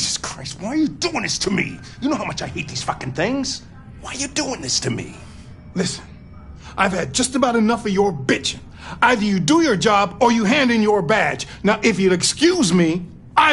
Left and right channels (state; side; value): identical; both; correlation 1.00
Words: Christ, why are you doing this to me? You know how much I hate these fucking things. Why are you doing this to me? Listen, I've had just about enough of your bitching. Either you do your job or you hand in your badge. Now, if you'll excuse me,